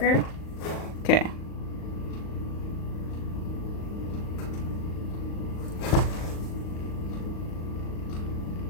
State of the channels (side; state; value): right; late; 38 ms